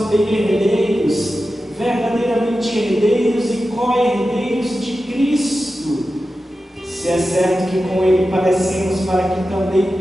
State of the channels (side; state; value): both; normal; correlation 0.92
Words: herdeiros, verdadeiramente herdeiros e co-herdeiros de Cristo, se é certo que com Ele padecemos, para que também